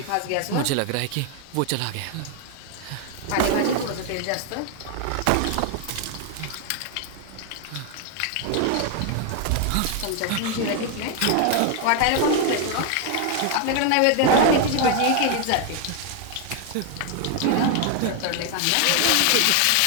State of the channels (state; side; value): different; both; correlation 0.01